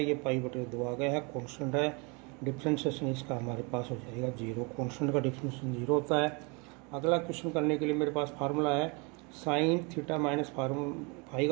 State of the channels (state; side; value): quieter; left; 30.8 dB